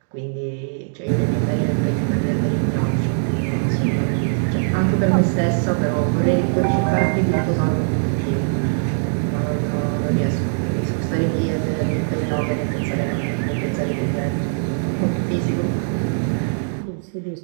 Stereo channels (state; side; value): silent; left; digital silence